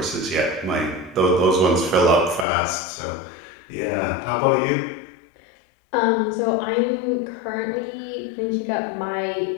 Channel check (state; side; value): drops out; right; at 2.5 s